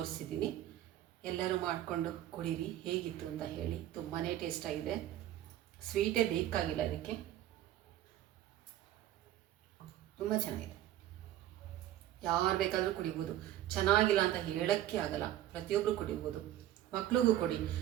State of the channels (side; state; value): left; quieter; 13.1 dB